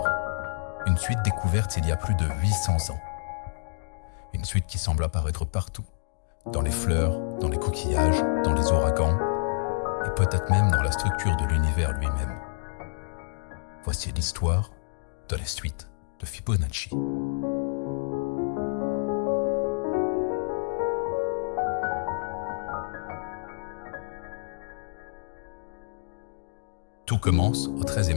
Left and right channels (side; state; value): right; silent; digital silence